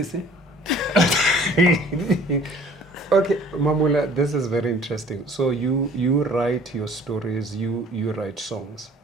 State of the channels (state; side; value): normal; both; correlation 0.52